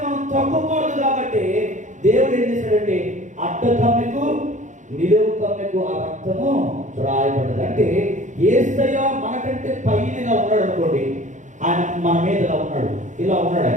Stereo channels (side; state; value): left; late; 0.36 ms